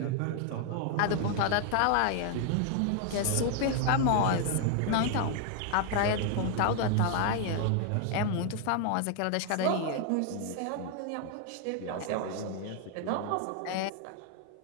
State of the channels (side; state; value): both; different; correlation 0.00